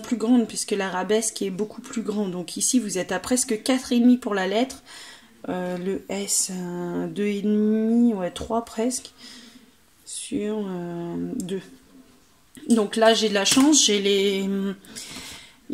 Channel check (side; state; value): both; identical; correlation 1.00